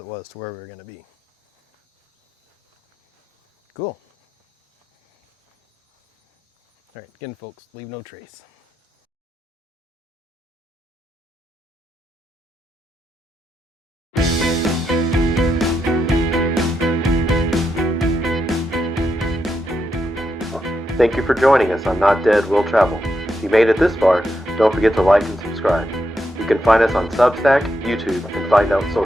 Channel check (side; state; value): both; normal; correlation 0.83